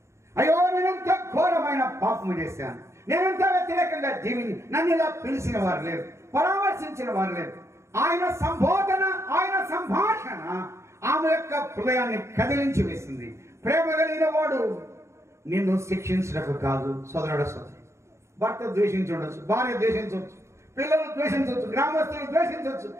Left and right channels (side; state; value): left; late; 0.14 ms